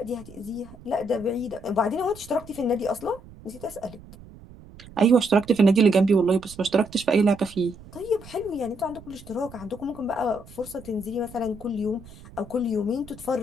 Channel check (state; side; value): noise; right; rumble, 19 dB below the sound